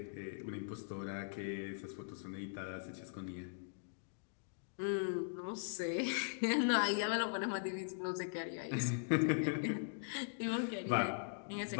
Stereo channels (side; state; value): right; silent; digital silence